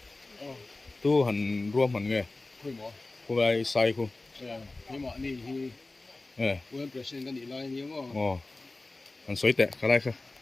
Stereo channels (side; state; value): right; quieter; 3.1 dB